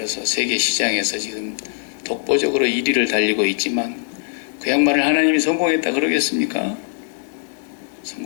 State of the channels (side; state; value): right; silent; 65 dB below the other